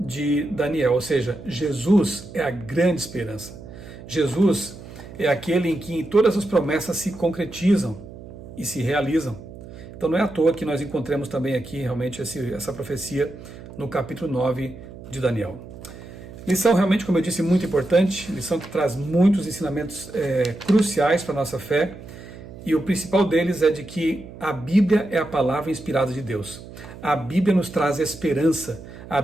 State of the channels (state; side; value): noise; right; hum, 15 dB below the sound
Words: Daniel, ou seja, Jesus é a grande esperança. Jesus é aquele em que todas as promessas se concretizam e se realizam. Então não é à toa que nós encontramos também aqui realmente essa profecia no capítulo 9 de Daniel. Lição realmente, como eu disse, muito importante, lição que traz muitos ensinamentos cruciais para a nossa fé, e o principal deles é de que a Bíblia é a palavra inspirada de Deus. A Bíblia nos traz esperança, a